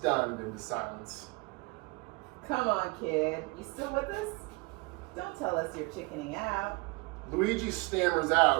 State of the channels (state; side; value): quieter; left; 26.4 dB